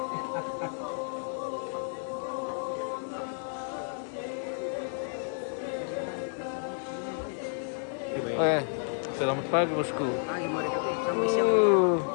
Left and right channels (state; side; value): silent; right; 57 dB below the other